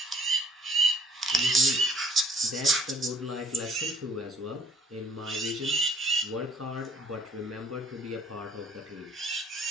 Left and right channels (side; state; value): both; normal; correlation 0.57